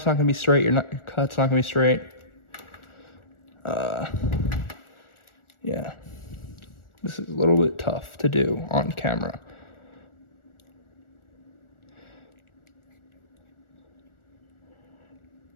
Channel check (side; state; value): right; late; 1.4 ms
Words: not gonna be straight, your cut's not gonna be straight. Yeah, this is a little bit tough to do on camera.